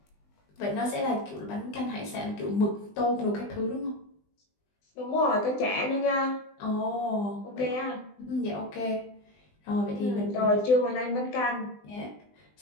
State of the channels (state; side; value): late; right; 20 ms